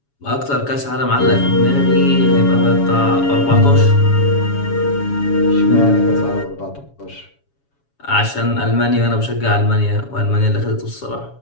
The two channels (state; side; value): late; right; 7.2 ms